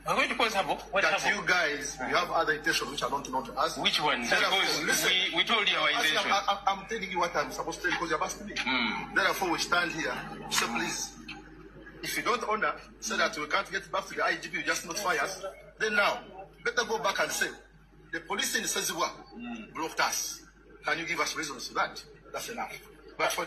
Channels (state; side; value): identical; both; correlation 1.00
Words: I'm going to cause Habo. What that Habo? you guys, you have other intentions which are not known to us. Which one? Because we told you our intention. I'm telling you what I'm supposed to tell you because you're asking me. Therefore, we stand here. So please, if you don't honor, say that we can't get back to the IGP, you just notify us. Then now, better go back and say, the police in Sezibwa blocked us. Can you give us reasons for that? That's enough. But for